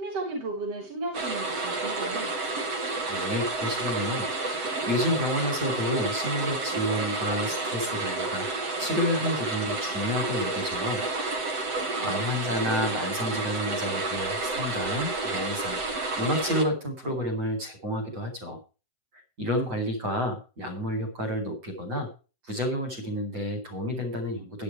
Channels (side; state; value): left; late; 7.7 ms